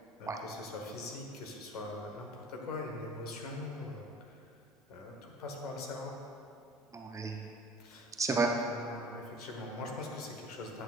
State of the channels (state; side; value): normal; both; correlation 0.45